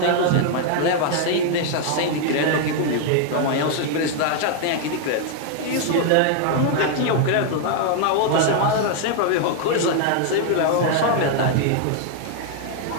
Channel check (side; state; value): both; different; correlation 0.00